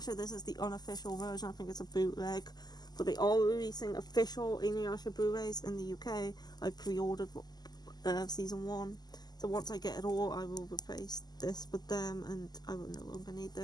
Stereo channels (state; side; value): late; right; 0.20 ms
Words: this is the unofficial version. I think it's a bootleg. But they are releasing official Inuyasha Blu-rays in the UK. I pre-ordered season 1. So once I get it all, I will replace this with them, and I will no longer need